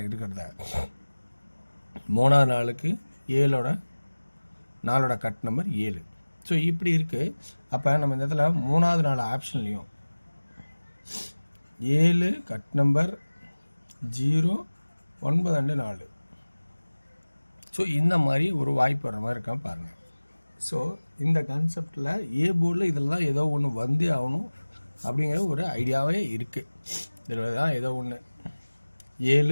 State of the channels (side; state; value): both; inverted; correlation -1.00